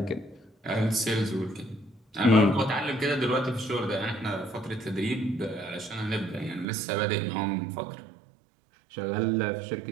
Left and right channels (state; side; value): drops out; left; at 6.7 s